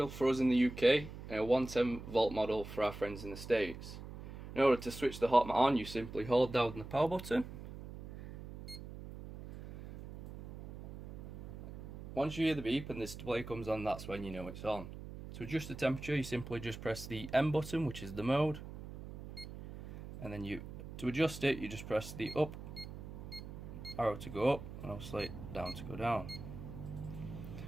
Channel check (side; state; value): right; noise; hum, 11 dB below the sound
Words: for us in the UK and a 110 volt model for our friends in the States. In order to switch the hot mat on, you simply hold down the power button. Once you hear the beep and the display comes on, that's when you know it's on. To adjust the temperature, you simply just press the M button, which is the mode, and then to adjust it, you just press the up arrow to go up and obviously down to go down.